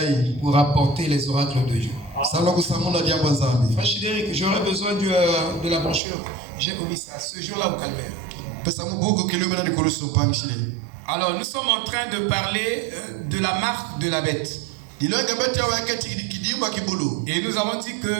pour apporter les oracles de Dieu. Frère Chidéric, j'aurais besoin de la brochure. J'ai omis ça ce jour-là au calvaire. Alors, nous sommes en train de parler de la marque de la bête. Et nous avons dit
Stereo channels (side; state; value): left; drops out; at 6.0 s